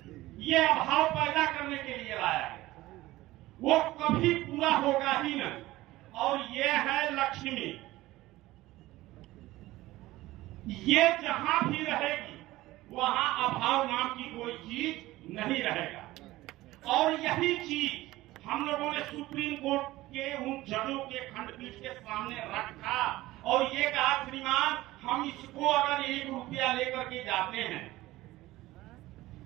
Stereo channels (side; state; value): left; quieter; 17.5 dB